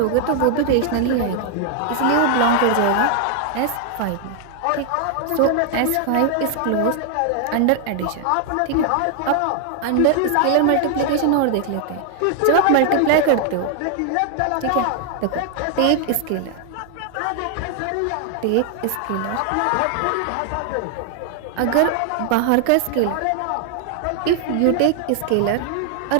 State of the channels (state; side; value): different; both; correlation 0.00